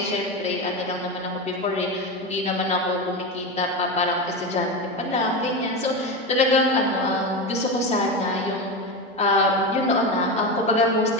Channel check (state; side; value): normal; both; correlation 0.19